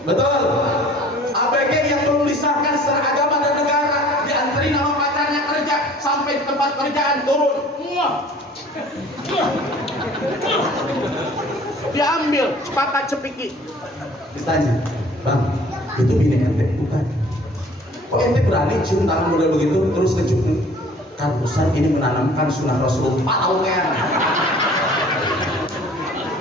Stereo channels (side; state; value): both; normal; correlation 0.50